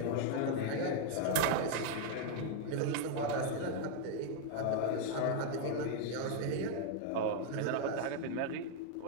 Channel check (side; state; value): both; different; correlation 0.00